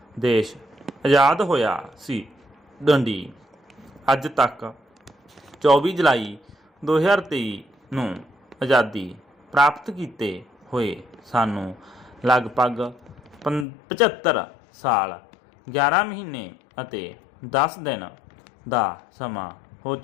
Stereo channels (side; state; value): right; drops out; at 13.7 s